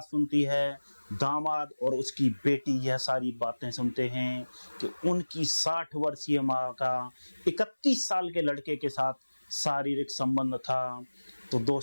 सुनती है, दामाद और उसकी बेटी यह सारी बातें सुनते हैं कि उनकी 60 वर्षीय माँ का 31 साल के लड़के के साथ शारीरिक संबंध था, तो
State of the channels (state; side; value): inverted; both; correlation -1.00